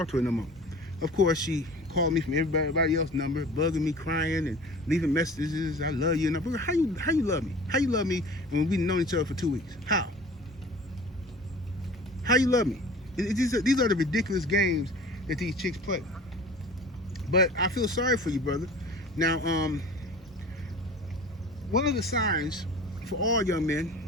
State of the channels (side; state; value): both; normal; correlation 0.42